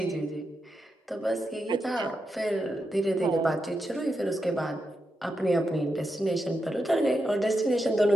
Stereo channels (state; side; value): normal; both; correlation 0.86